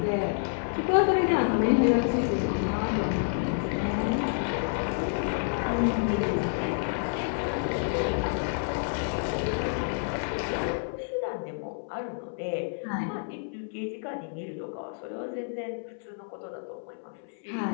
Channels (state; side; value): silent; right; 59 dB below the other